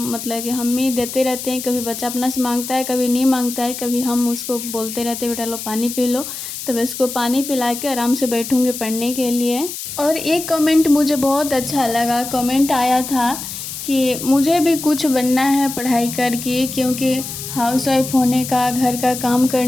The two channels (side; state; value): left; noise; hiss, 8 dB below the sound